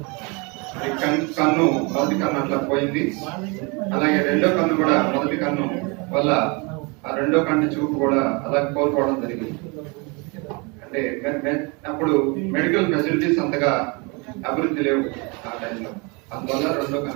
కన్ను మొదటి కన్ను అట్లా పోయింది. అలాగే రెండో కన్ను కూడా మొదటి కన్ను వల్ల ఆ రెండో కన్ను చూపు కూడా అలా కోల్పోవడం జరిగింది. అంటే అప్పుడు మెడికల్ ఫెసిలిటీస్ అంతగా అభివృద్ధి లేవు ఆ టైంలో, అందువల్ల రెండో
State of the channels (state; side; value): quieter; left; 29.8 dB